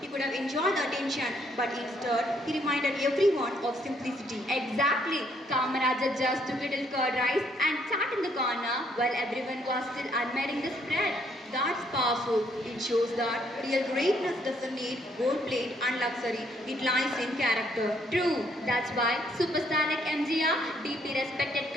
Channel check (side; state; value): both; normal; correlation 0.69